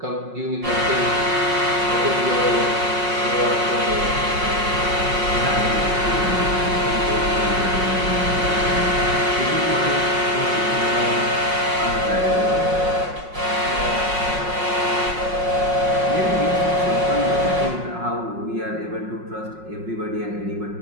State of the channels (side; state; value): left; late; 5.5 ms